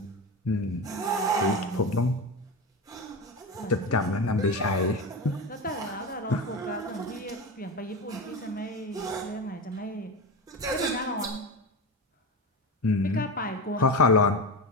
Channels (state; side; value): normal; both; correlation 0.22